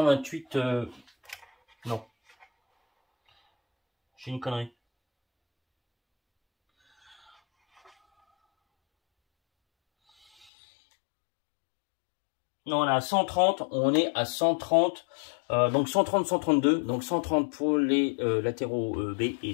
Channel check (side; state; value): right; drops out; at 10.5 s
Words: Non. J'ai une connerie. Non, on est à 130, on est à 130, donc 130, 132, donc 130 pour les latéraux B et